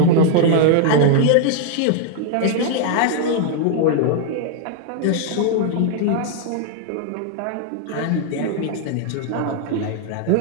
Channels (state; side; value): different; both; correlation 0.00